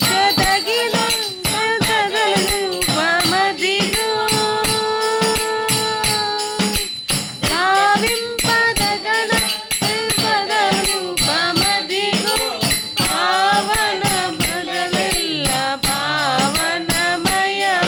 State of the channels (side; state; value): both; identical; correlation 1.00